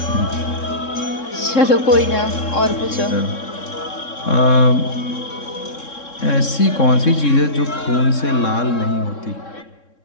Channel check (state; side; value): late; right; 3.7 ms